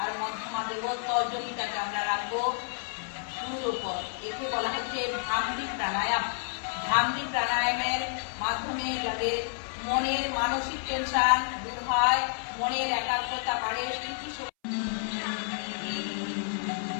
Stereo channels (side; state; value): right; silent; 58 dB below the other